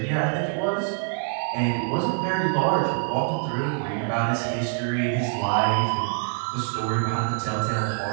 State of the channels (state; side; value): silent; left; digital silence